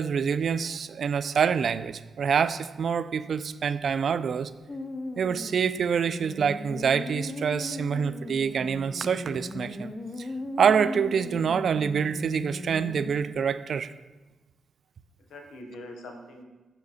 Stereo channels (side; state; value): left; quieter; 6.0 dB